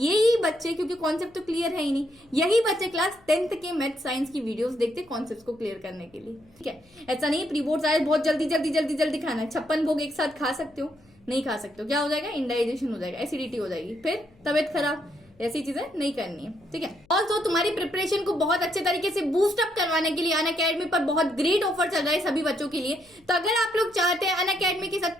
बच्चे, क्योंकि कॉन्सेप्ट तो क्लियर है ही नहीं, यही बच्चे क्लास 10th के मैथ साइंस की वीडियोस देखते कॉन्सेप्ट को क्लियर करने के लिए। ठीक है, ऐसा नहीं प्री बोर्ड आए बहुत जल्दी जल्दी जल्दी जल्दी खाना है। 56 भोग एक साथ खा सकते हो, नहीं खा सकते हो, क्या हो जाएगा, इंडाइजेशन हो जाएगा, एसिडिटी हो जाएगी, फिर तबियत खराब, ऐसी चीजें नहीं करनी है। ठीक है, और तो तुम्हारी प्रिपरेशन को बहुत अच्छे तरीके से बूस्ट अप करवाने के लिए अनअकैडमी पर बहुत ग्रेट ऑफर चल रहा है सभी बच्चों के लिए। तो अगर आप लोग चाहते हैं अनअकैडमी के साथ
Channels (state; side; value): noise; left; hum, 30 dB below the sound